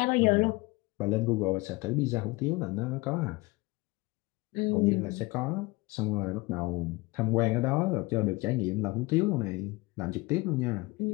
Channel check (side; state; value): right; quieter; 23.5 dB